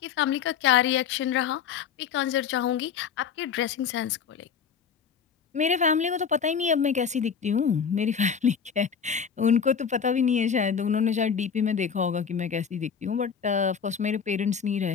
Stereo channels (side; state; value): right; quieter; 6.9 dB